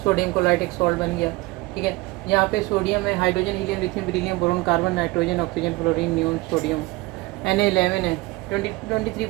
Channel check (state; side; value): quieter; left; 21.6 dB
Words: सोडियम क्लोराइड एक सॉल्ट बन गया, ठीक है। यहाँ पे सोडियम है, hydrogen helium lithium beryllium boron carbon nitrogen oxygen fluorine neon sodium, Na11 है, 23